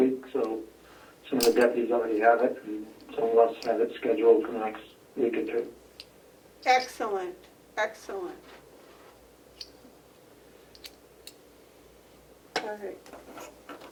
so some of the deputies already have it, and some of us have it scheduled for the next week or two. Excellent, excellent. All right.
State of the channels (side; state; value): both; identical; correlation 1.00